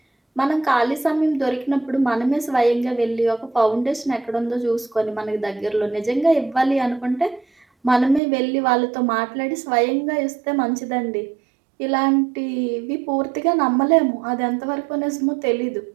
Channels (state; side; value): drops out; left; at 8.2 s